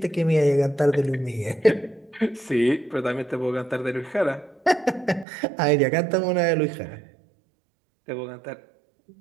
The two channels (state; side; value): drops out; left; at 5.2 s